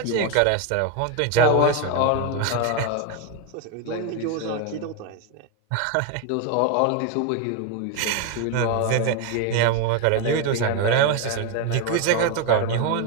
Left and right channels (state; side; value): different; both; correlation 0.01